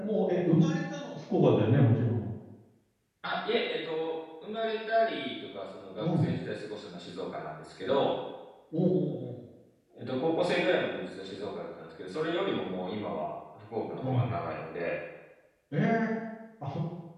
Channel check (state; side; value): identical; both; correlation 1.00